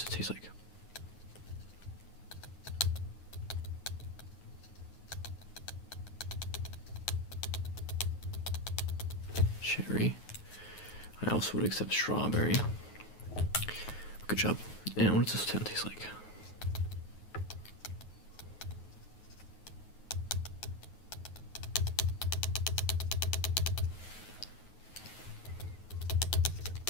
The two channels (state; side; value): late; right; 9.4 ms